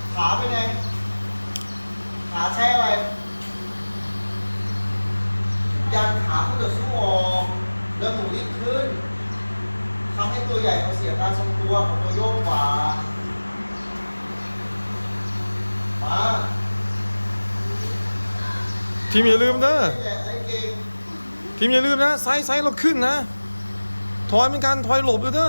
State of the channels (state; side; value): inverted; both; correlation -1.00